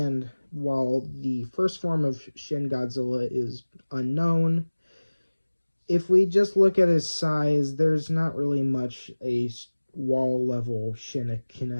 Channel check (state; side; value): inverted; both; correlation -1.00